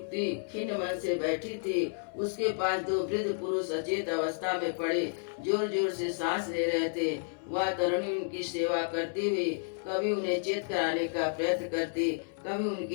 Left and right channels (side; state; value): right; silent; 57 dB below the other